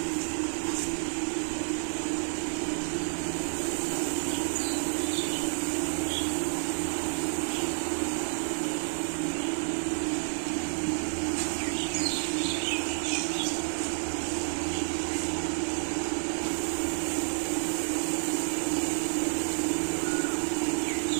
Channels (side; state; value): left; silent; 58 dB below the other